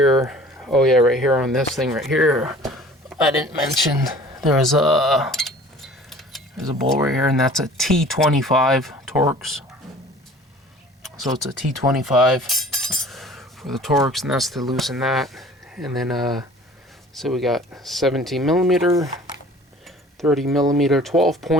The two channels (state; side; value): normal; both; correlation 0.47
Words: Oh yeah, right here on this thing right here. I didn't mention there's a bolt right here, and that's a T25 Torx. So it's a T25 for the Torx, and that's to loosen that. And then, so we got 17 millimeter, 30 millimeter 12